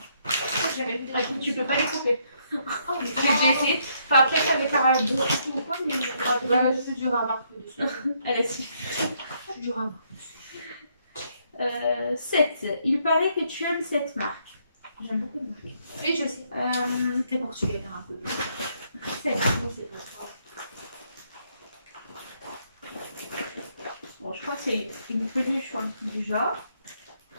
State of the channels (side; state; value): both; inverted; correlation -0.72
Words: J'ai jamais vu des Tu peux pas les couper. Oh, mais J'ai déjà essayé. Enfin, après, ça avait pas beaucoup ou quoi, mais. Bah, je suis dur à marquer dessus. Elle a si. Je suis dur à marquer. 7. Il paraît que tu aimes cette marque. J'aime beaucoup de marque. Oui, je sais. T'es portugais, un peu plus. 7. C'est pas ça. Bon, je crois que c'est une peluche ou un truc du genre.